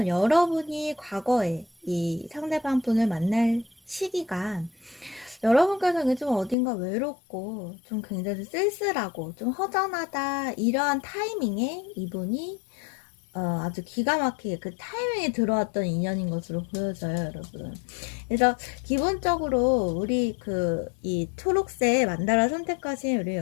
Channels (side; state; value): right; drops out; at 6.6 s